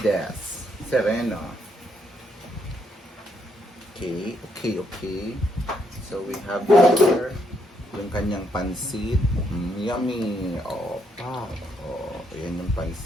Sereno. Okay. So, we have here yung kanyang pansit. Yummy! Ayan yung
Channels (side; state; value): both; normal; correlation 0.75